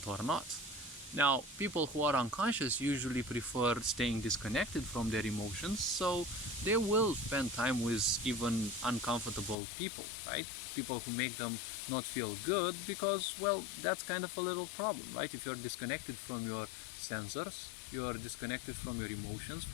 or not. Now, people who are unconscious usually prefer staying disconnected from their emotions, so they will spend time with even uncomfortable people, right? People who make them not feel good because, well, that's kind of a little problem, right? If you're disconnected from your sensors, you're disconnected from your emotions,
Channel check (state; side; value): drops out; right; at 9.6 s